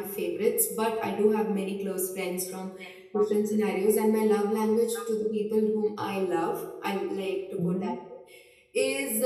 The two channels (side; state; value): both; identical; correlation 1.00